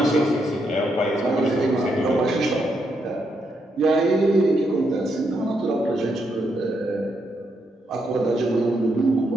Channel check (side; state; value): both; normal; correlation 0.79